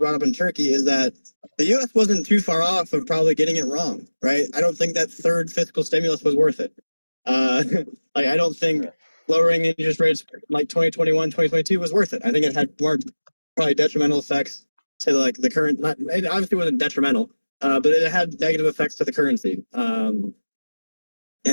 up in Turkey is that the U.S. wasn't too far off of probably getting it wrong, right? I don't think that third fiscal stimulus was worth it. Like I don't think lowering interest rates like 2021, 2022 was worth it. I think it had more probably detrimental effects to like the current. It obviously wasn't detrimental, but it had negative effects to the currency. And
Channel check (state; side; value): inverted; both; correlation -1.00